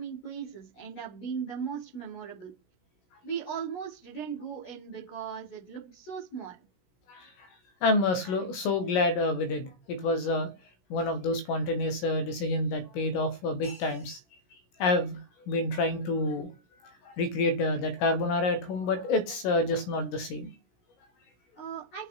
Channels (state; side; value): late; right; 16 ms